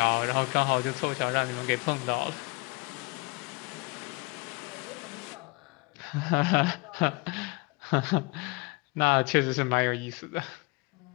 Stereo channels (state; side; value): quieter; right; 26.8 dB